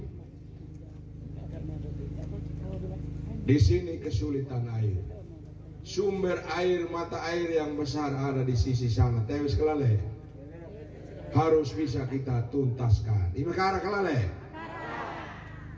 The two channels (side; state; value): both; identical; correlation 1.00